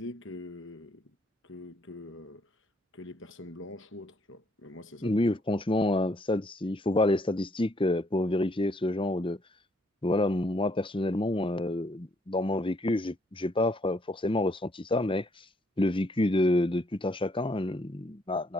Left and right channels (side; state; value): both; normal; correlation 0.68